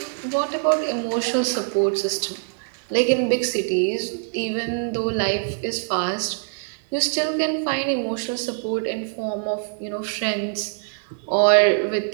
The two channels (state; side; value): silent; left; digital silence